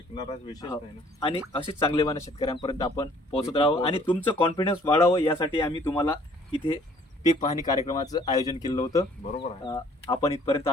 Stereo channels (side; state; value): both; normal; correlation 0.58